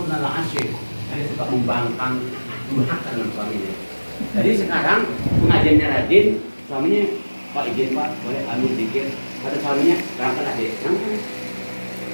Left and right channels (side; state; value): both; inverted; correlation -1.00